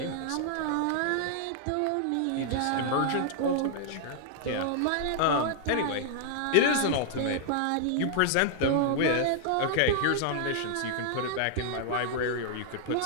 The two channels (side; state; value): both; different; correlation -0.01